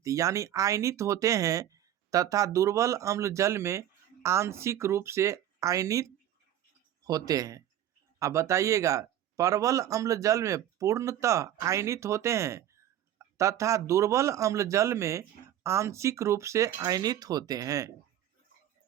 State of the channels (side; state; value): left; quieter; 11.5 dB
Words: होते हैं तथा दुर्बल अम्ल जल में आंशिक रूप से आयनित होते हैं। अब बताइएगा, परवल अम्ल जल में पूर्णतः आयनित होते हैं तथा दुर्बल अम्ल जल में आंशिक रूप से आयनित होते हैं।